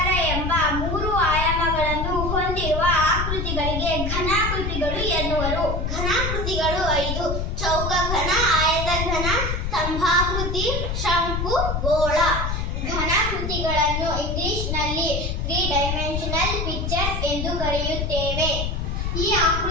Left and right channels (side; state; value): left; noise; rumble, 2 dB below the sound